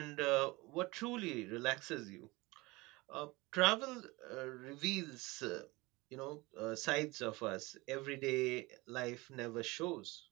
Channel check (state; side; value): quieter; left; 22.8 dB